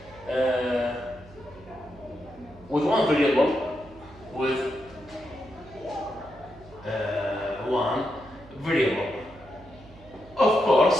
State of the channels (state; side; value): noise; right; hum, 22 dB below the sound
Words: with one variable, of